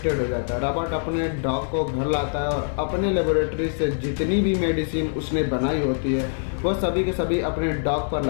हो जाता है। रॉबर्ट अपने डॉग को घर लाता है और अपने लेबोरेटरी से जितनी भी मेडिसिन उसने बनाई होती है वह सभी के सभी अपने डॉग पर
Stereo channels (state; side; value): silent; right; digital silence